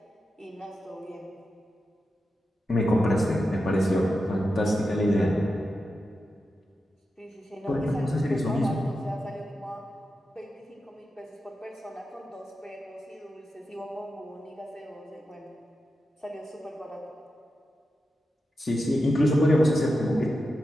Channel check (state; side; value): normal; both; correlation 0.90